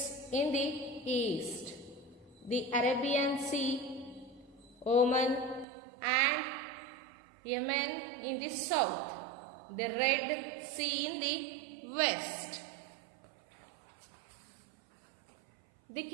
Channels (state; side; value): drops out; left; at 5.7 s